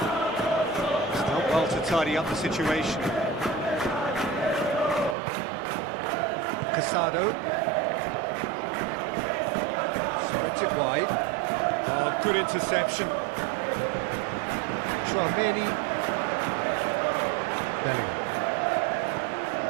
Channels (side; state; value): left; drops out; at 5.2 s